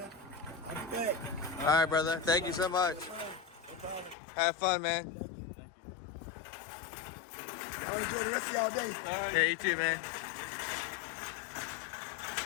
I'll be back. All right, brother. Thank you so much. No problem. Have fun, man. Thank you. Have a good rest of y'all day. All right. Yeah, you too, man.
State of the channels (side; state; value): right; drops out; at 4.2 s